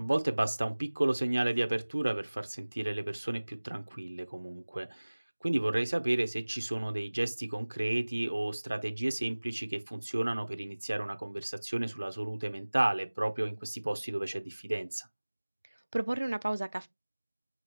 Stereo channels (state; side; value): inverted; both; correlation -1.00